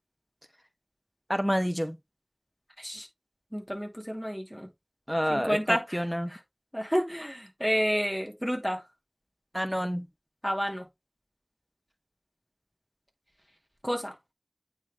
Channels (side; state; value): both; identical; correlation 1.00